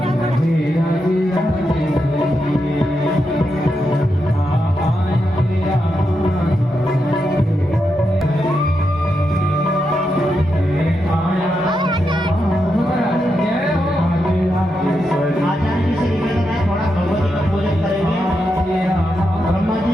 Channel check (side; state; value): both; normal; correlation 0.85